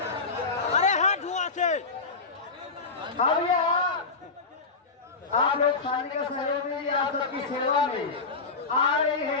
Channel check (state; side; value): quieter; right; 4.3 dB